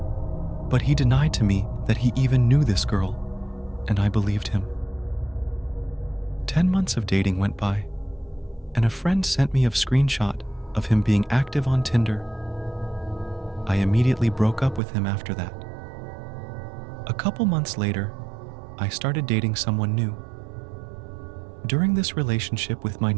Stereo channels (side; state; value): left; drops out; at 14.8 s